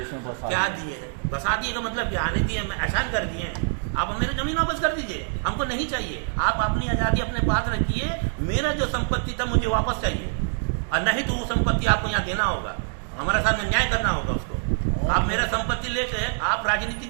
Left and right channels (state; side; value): silent; left; digital silence